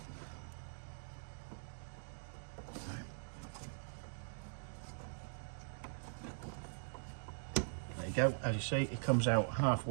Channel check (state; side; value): silent; left; digital silence